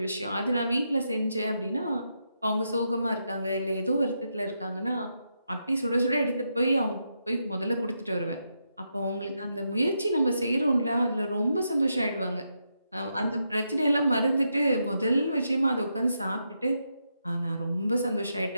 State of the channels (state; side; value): inverted; both; correlation -0.83